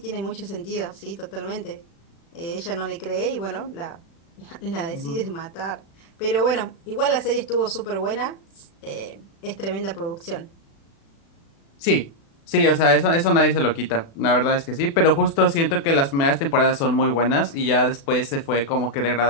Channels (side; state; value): right; late; 36 ms